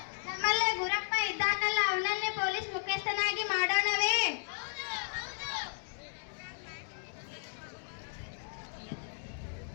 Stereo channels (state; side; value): silent; right; digital silence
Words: ನಮ್ಮಲ್ಲೇ ಗುರಪ್ಪ ಇದ್ದಾನಲ್ಲ, ಅವನನ್ನೇ ಪೊಲೀಸ್ ಮುಖ್ಯಸ್ಥನಾಗಿ ಮಾಡೋಣವೇ?